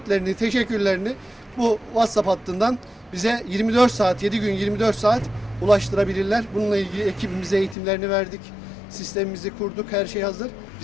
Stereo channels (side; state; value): right; drops out; at 7.8 s